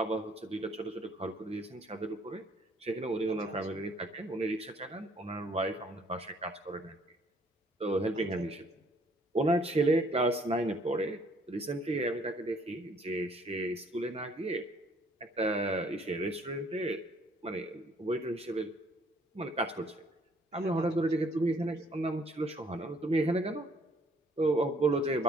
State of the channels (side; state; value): both; normal; correlation 0.62